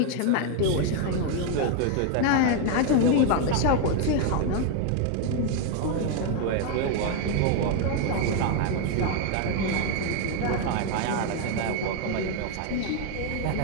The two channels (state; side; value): different; both; correlation 0.01